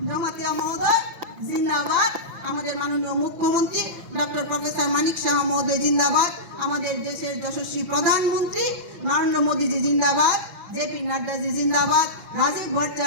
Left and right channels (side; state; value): left; late; 5.9 ms